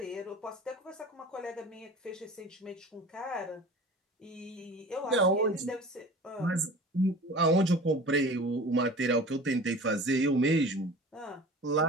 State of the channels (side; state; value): both; normal; correlation 0.40